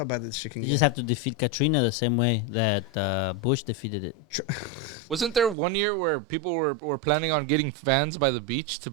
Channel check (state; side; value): drops out; left; at 5.6 s